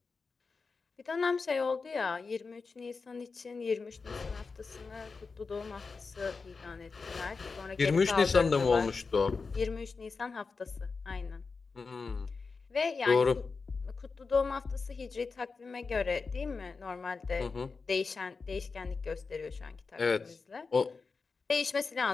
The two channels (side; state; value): right; quieter; 4.6 dB